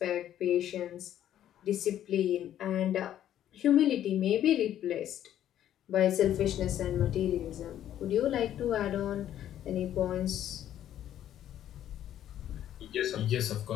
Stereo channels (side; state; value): right; quieter; 11.3 dB